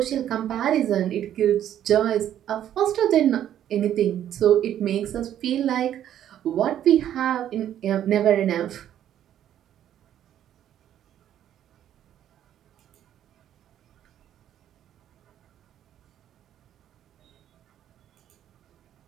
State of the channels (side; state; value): left; quieter; 10.9 dB